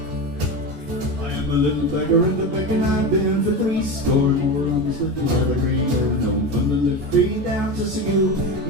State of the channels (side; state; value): left; late; 14 ms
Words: A little beggar in the beck, and I've been for 3 score more on this little leather green. Known from the Liffey down to Segue,